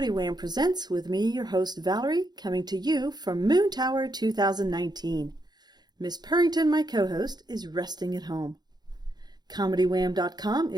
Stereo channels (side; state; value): left; late; 0.20 ms